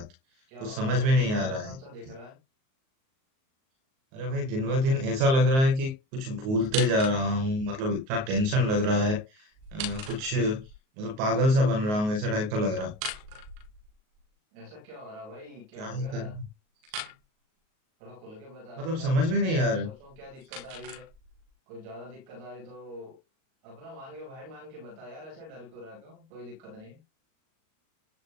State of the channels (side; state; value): left; late; 38 ms